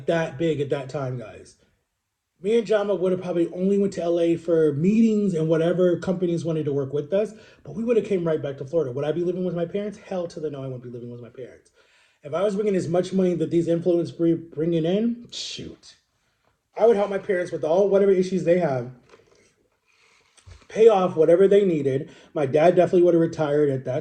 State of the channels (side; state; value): both; identical; correlation 1.00